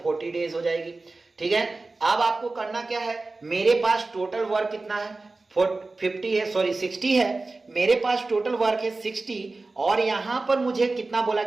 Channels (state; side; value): quieter; left; 3.4 dB